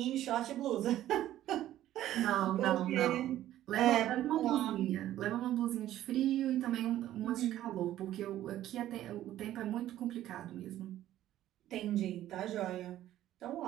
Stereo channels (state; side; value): quieter; left; 13.2 dB